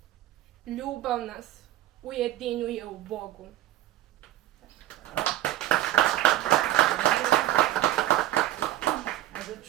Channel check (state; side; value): quieter; left; 14.2 dB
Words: Ljubav nas ujedinjuje u Bogu. A da